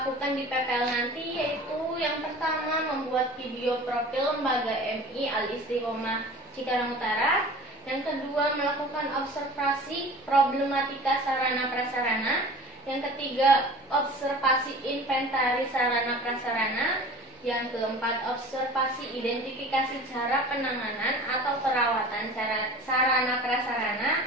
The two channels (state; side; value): normal; both; correlation 0.41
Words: di PPL nanti, yaitu yang pertama membuat video profil lembaga MI Al-Istiqomah Cikarang Utara, yang kedua melakukan observasi problematika sarana prasarana, yang ketiga observasi inventaris sarana prasarana, yang keempat observasi identifikasi cara penanganan atau perawatan sarana prasarana,